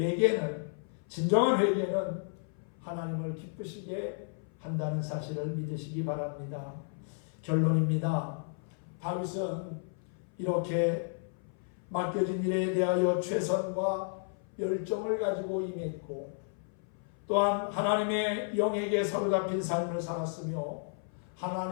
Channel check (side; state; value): right; silent; 56 dB below the other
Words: 진정한 회개는 하나님을 기쁘시게 한다는 사실을 믿으시기 바랍니다. 결론입니다. 다윗은 이렇게 맡겨진 일에 대하여 최선과 열정을 가지고 임했고 또한 하나님의 영에게 사로잡힌 삶을 살았으며